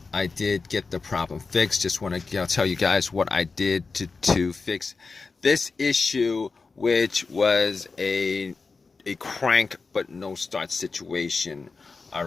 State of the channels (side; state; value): right; quieter; 4.3 dB